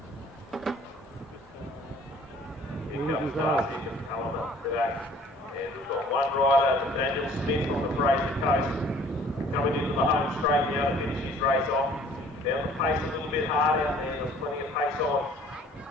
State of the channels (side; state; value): both; normal; correlation 0.54